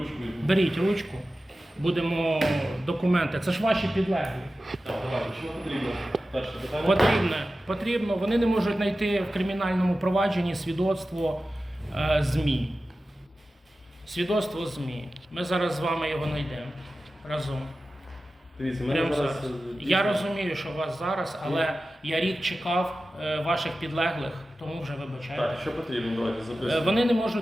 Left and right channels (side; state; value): both; normal; correlation 0.94